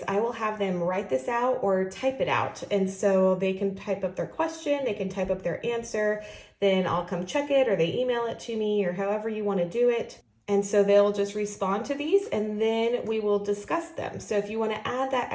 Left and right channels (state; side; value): identical; both; correlation 1.00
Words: I will have them write this out or type it out. And so they can type up their question, they can type up their answer, then I'll come check it or they email it to me or however you want to do it. And so they'll just respond to these and then we will discuss them. So if you want to add that